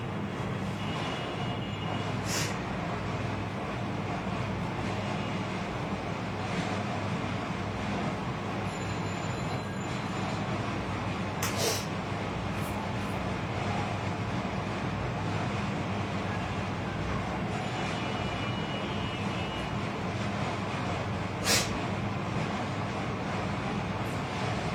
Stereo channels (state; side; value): identical; both; correlation 1.00